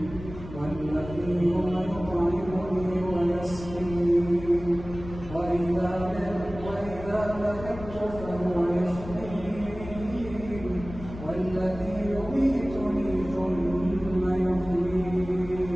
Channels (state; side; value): noise; left; rumble, 13 dB below the sound